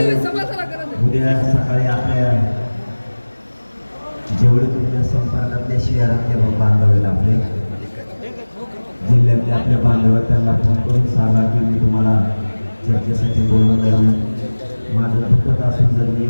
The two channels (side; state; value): both; inverted; correlation -1.00